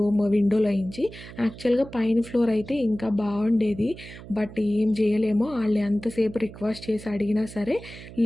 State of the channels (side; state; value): right; noise; hum, 15 dB below the sound